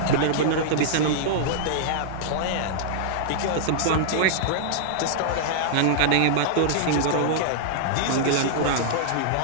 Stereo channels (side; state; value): both; different; correlation -0.01